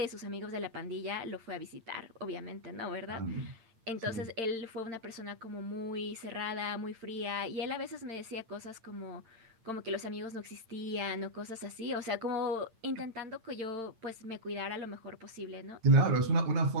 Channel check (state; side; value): late; left; 8.8 ms